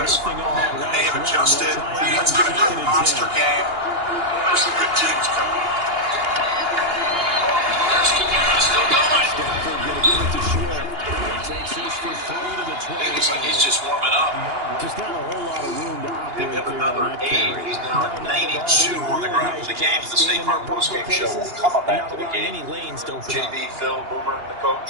football. They have adjusted. It's going to be a monster game. There's some good teams coming. Still going. Stafford going to give it to Schwartz. Takes this for 3 to the 20. It looks like he's just warming up. Just not a whole lot of room to operate Give him there on another that 8. carry. He's now at 92 on the ground for the game. The State Farm postgame show will come back to the game. JB, Phil, Boomer, the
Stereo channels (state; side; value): late; left; 2.8 ms